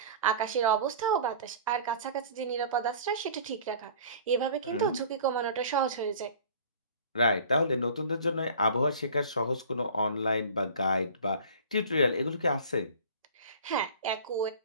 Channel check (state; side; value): inverted; both; correlation -0.43